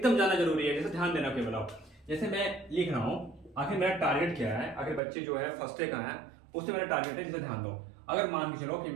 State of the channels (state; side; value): drops out; left; at 5.0 s